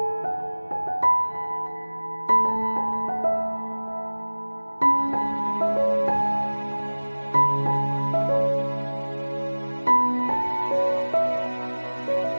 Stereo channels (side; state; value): both; inverted; correlation -1.00